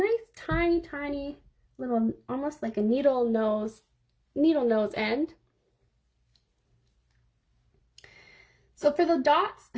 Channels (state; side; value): identical; both; correlation 1.00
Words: tiny little, almost like a needle nose end. So for the dots,